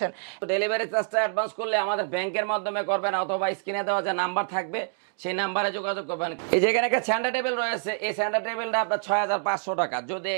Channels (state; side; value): silent; left; digital silence